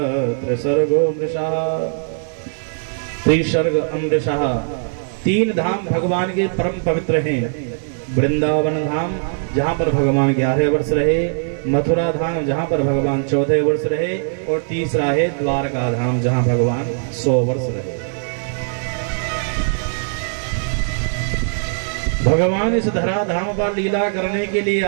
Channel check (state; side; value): silent; left; 60 dB below the other